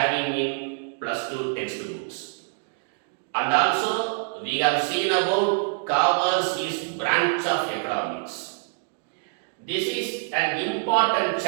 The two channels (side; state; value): left; silent; 59 dB below the other